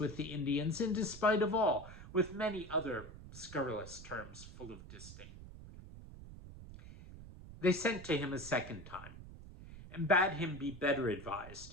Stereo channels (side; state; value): right; noise; rumble, 14 dB below the sound